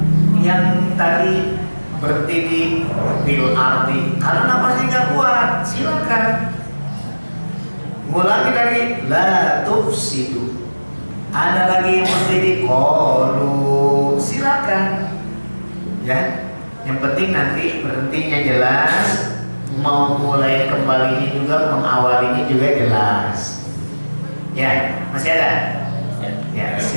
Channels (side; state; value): both; inverted; correlation -1.00